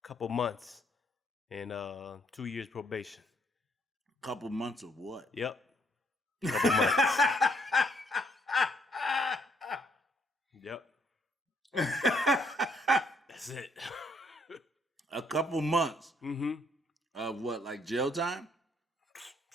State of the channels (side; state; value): both; normal; correlation 0.69